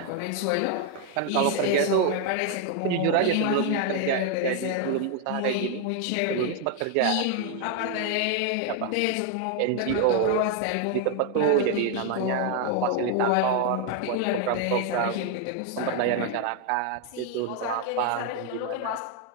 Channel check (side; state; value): both; different; correlation 0.01